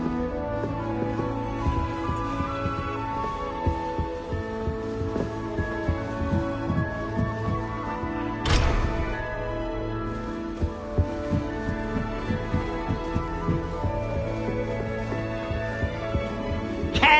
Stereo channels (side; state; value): both; identical; correlation 1.00